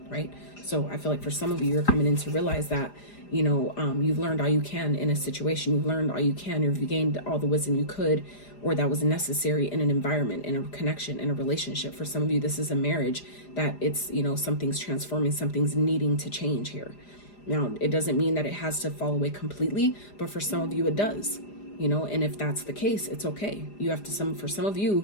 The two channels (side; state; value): right; late; 4.9 ms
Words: right? So I feel like for some of you, you're coming in to realize that, you've learned all you can in a situation. You've learned all you can. You've gained all the wisdom you could, or that was necessary in an environment, in a connection, in a relationship. For some of you, this is a marriage that it's, something's transforming, something's needing to change here. Now, it doesn't mean that it has to fall away completely, but for some of you, it does, and if that's the case, it's okay. For some of